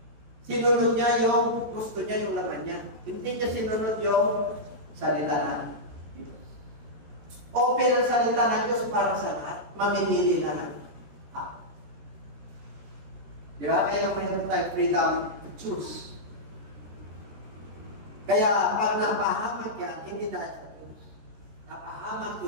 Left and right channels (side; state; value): left; late; 13 ms